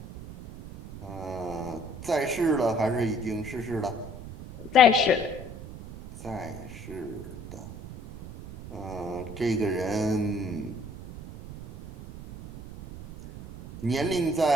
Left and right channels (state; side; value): noise; right; rumble, 12 dB below the sound